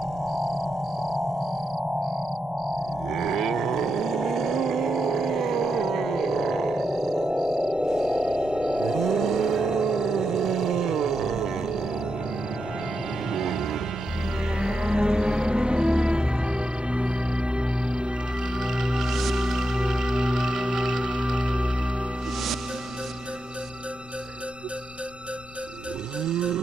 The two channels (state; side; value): noise; left; rumble, 22 dB below the sound